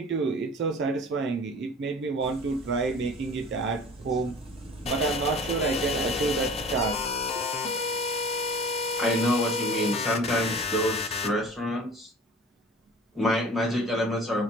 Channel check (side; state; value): both; normal; correlation 0.43